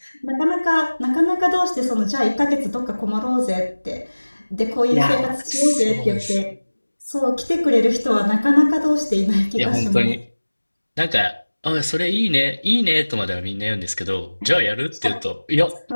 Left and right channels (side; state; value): both; inverted; correlation -1.00